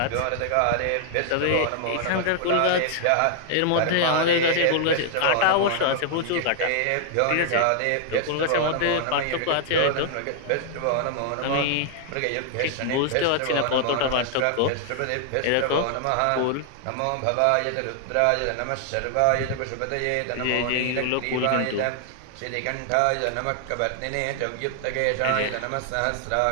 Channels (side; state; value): both; different; correlation 0.00